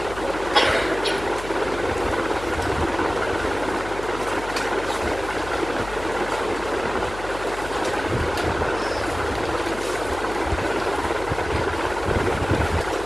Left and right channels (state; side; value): noise; left; hum, 12 dB below the sound